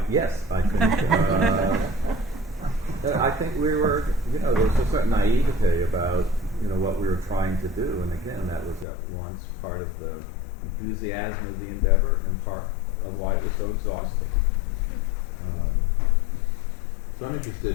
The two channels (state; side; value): drops out; right; at 8.8 s